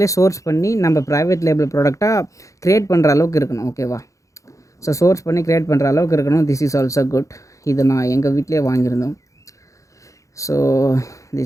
சோர்ஸ் பண்ணி நம்ம ப்ரைவேட் லேபிள் ப்ராடக்டாக க்ரியேட் பண்ணுற அளவுக்கு இருக்கணும். ஓகேவா? ஸோ சோர்ஸ் பண்ணி க்ரியேட் பண்ணுற அளவுக்கு இருக்கணும். This is also good. இது நான் எங்கள் வீட்டிலே வாங்கியிருந்தோம். So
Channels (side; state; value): right; late; 0.15 ms